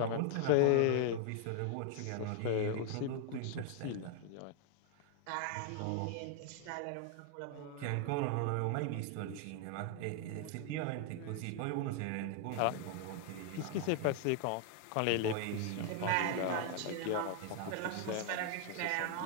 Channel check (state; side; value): different; both; correlation 0.00